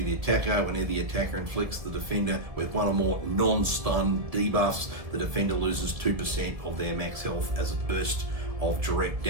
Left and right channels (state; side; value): late; left; 1.7 ms